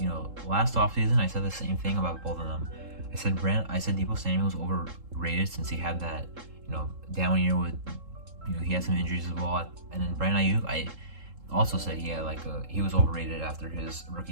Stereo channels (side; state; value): left; late; 3.7 ms